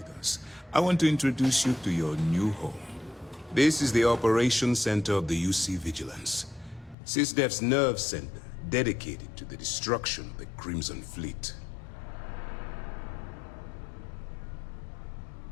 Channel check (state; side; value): drops out; right; at 7.0 s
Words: us, I want to introduce you to your new home. This is the Operations Center of the UC Vigilance. SysDef's nerve center, dedicated to the destruction of the Crimson Fleet.